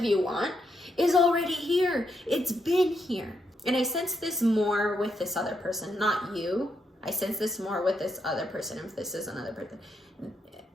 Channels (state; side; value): normal; both; correlation 0.79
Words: you want, is already here. It's been here. And I sense this more with this other person, not you. I sense this more with this other person. If this is another person,